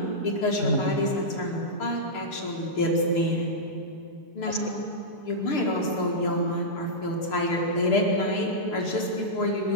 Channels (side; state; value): right; late; 6.7 ms